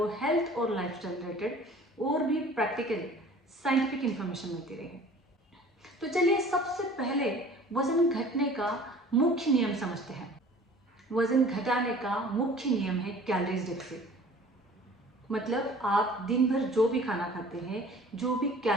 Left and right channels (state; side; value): normal; both; correlation 0.47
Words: हेल्थ और लाइफस्टाइल रिलेटेड और भी प्रैक्टिकल साइंटिफिक इंफॉर्मेशन मिलती रहे। तो चलिए सबसे पहले वजन घटने का मुख्य नियम समझते हैं। वजन घटाने का मुख्य नियम है कैलोरीज डेफिसिट। मतलब आप दिन भर जो भी खाना खाते हैं, जो भी